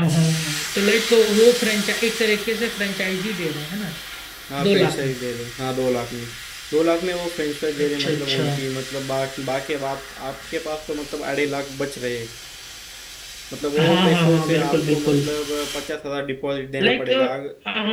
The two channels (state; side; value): identical; both; correlation 1.00